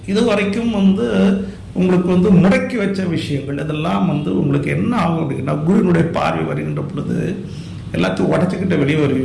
இதுவரைக்கும் வந்து உங்களுக்கு வந்து முடக்கி வச்ச விஷயங்கள், இதெல்லாம் வந்து உங்களுக்கு என்ன ஆகும் அப்படின்னா, குருவினுடைய பார்வை வருகின்ற பொழுது எல்லாத்தையும் உடச்சிக்கிட்டு வெளியே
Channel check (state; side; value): identical; both; correlation 1.00